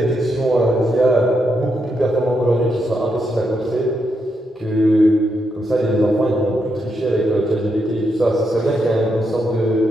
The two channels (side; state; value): both; normal; correlation 0.81